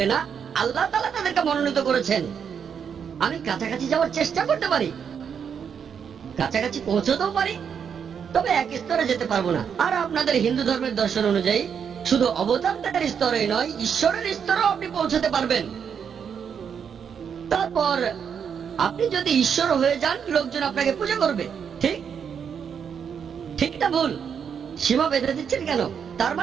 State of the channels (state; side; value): quieter; left; 7.3 dB